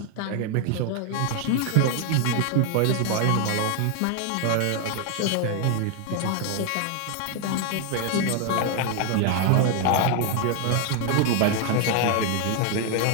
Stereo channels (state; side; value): different; both; correlation 0.00